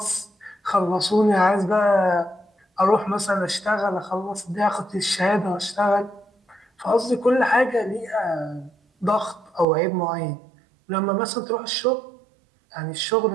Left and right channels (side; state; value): left; drops out; at 9.7 s